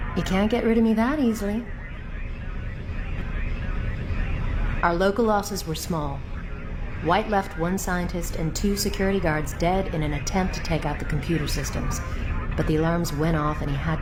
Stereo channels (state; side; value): identical; both; correlation 1.00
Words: You can't get rid of me that easily. Our local losses were small. White left 1 scientist and 2 security guards dead in an attempt to take out the computer systems, but the alarms went off and he had